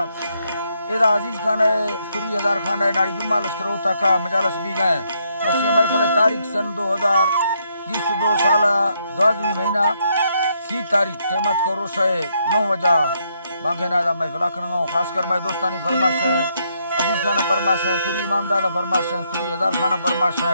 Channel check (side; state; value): both; inverted; correlation -0.75